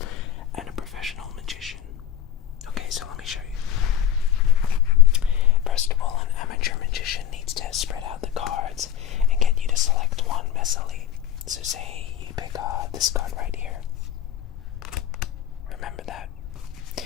and a professional magician. Okay, so let me show you. First of all, an amateur magician needs to spread out the cards and get you to select one messily. So say you pick this card right here. Remember that.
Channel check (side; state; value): right; quieter; 10.4 dB